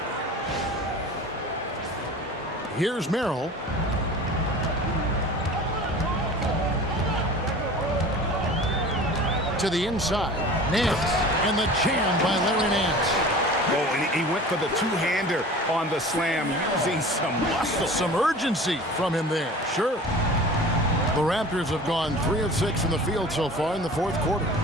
Here's Merrill. To the inside. Nance. And the jam by Larry Nance. Oh, and he went for the two-hander on the slam using some muscle. Some urgency from him there. Sure. The Raptors have gone 3 of 6 from the field so far in the fourth quarter.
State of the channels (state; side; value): normal; both; correlation 0.40